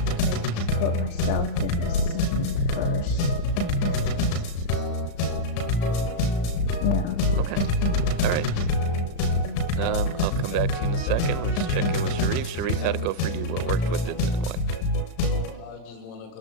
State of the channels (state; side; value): late; right; 35 ms